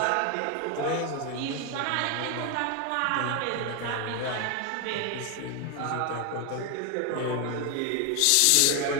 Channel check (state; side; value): different; both; correlation 0.01